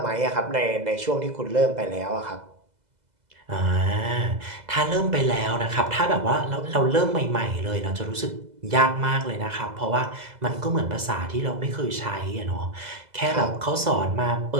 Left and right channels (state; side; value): late; left; 2.0 ms